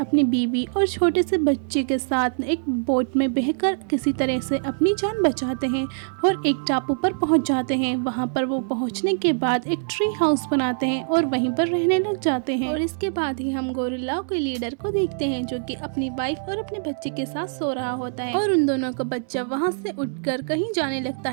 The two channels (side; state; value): left; silent; digital silence